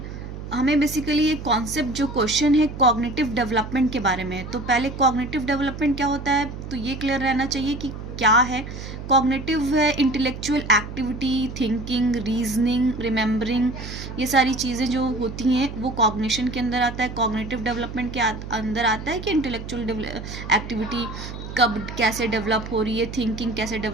हमें बेसिकली ये कॉन्सेप्ट जो क्वेश्चन है कॉग्निटिव डेवलपमेंट के बारे में है. तो पहले कॉग्निटिव डेवलपमेंट क्या होता है तो ये क्लियर रहना चाहिए कि क्या है. कॉग्निटिव है intellectual activity, thinking, reasoning, remembering, ये सारी चीज़ें जो होती हैं वो कॉग्निशन के अंदर आता है. कॉग्निटिव डेवलपमेंट के अंदर आता है कि इंटेलेक्चुअल एक्टिविटी कब कैसे डेवलप हो रही है, थिंकिंग कैसे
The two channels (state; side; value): noise; right; hum, 10 dB below the sound